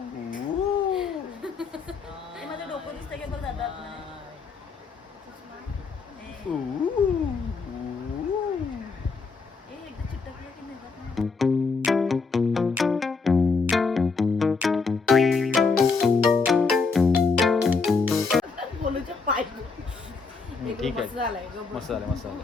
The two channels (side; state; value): right; quieter; 4.6 dB